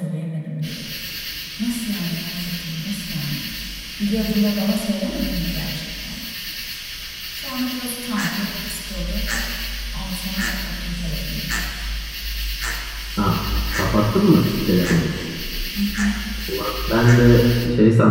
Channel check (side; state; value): both; identical; correlation 1.00